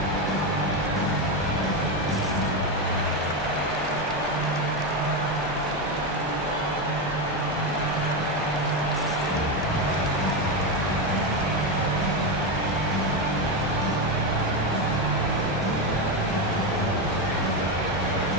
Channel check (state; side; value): normal; both; correlation 0.11